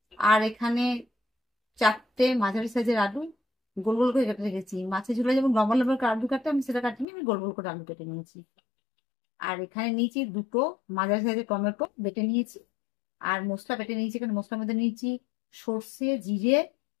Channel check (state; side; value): drops out; right; at 7.1 s